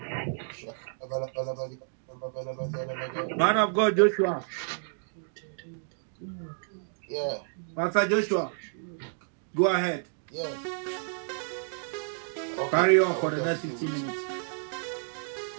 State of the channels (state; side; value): silent; left; digital silence